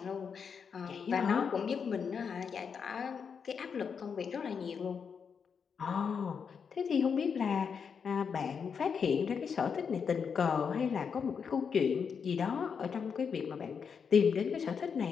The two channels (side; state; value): right; quieter; 6.4 dB